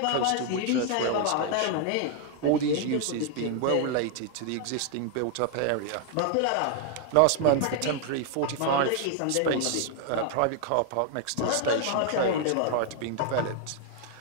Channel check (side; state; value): both; different; correlation 0.00